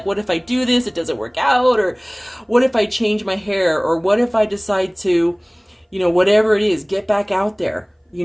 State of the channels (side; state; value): both; identical; correlation 1.00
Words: what if I do this, it doesn't work out? Or what if I change my hair? Or what if I decide to, whatever it is, get back out there? you